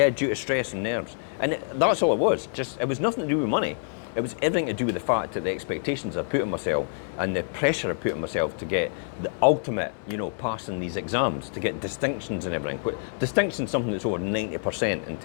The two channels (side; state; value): right; silent; digital silence